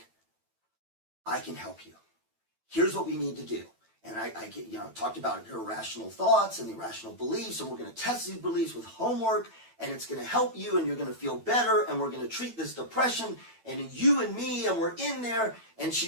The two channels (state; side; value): late; left; 9.0 ms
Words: I can help you. Here's what we need to do. And I get, talked about your irrational thoughts and irrational beliefs, and we're going to test these beliefs with homework. and it's going to help you, and you're going to feel better, and we're going to treat this depression, and you and me, and we're in there. And